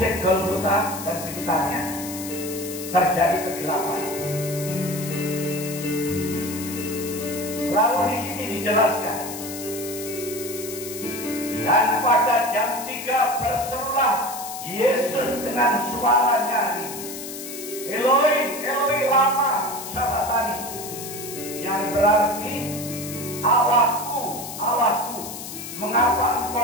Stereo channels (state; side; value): noise; left; hiss, 10 dB below the sound